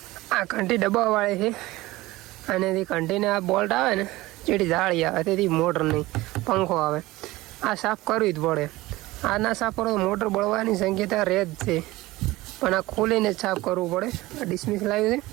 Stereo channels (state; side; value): quieter; left; 19.0 dB